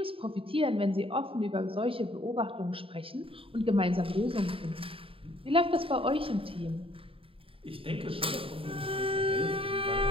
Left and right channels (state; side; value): late; left; 0.27 ms